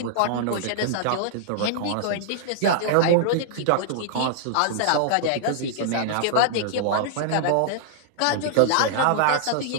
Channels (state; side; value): different; both; correlation -0.01